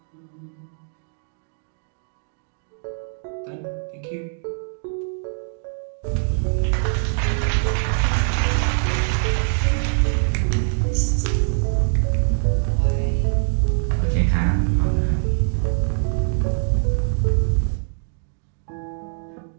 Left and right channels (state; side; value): silent; left; 63 dB below the other